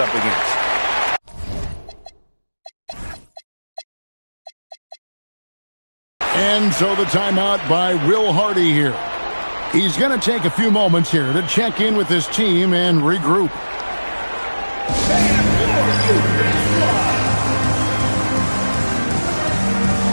against. And so the timeout by Will Hardy here. He's going to take a few moments here to check in with his team and regroup.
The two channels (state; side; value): inverted; both; correlation -1.00